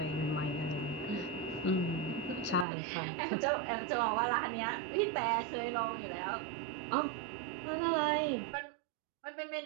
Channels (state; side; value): drops out; left; at 2.7 s